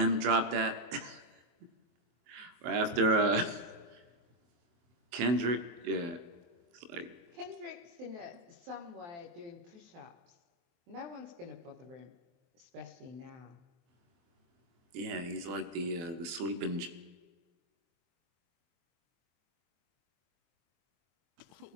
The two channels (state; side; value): late; left; 23 ms